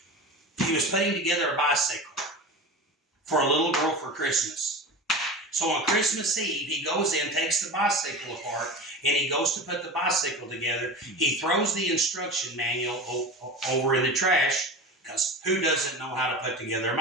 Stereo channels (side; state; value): both; normal; correlation 0.30